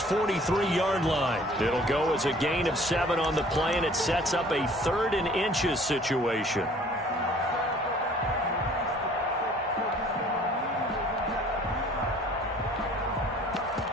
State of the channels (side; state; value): both; normal; correlation 0.53